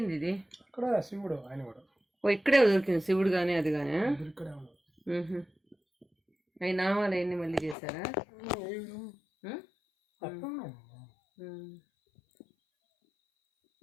ఇది ఇక్కడ శివుడు, ఆయన కూడా ఓ ఇక్కడే దొరికింది శివుడు కానీ అది కానీ. ఇక్కడే ఉన్నాం. అవి నామాలు అవన్నీ మళ్ళీ చేశారా?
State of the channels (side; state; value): right; drops out; at 7.8 s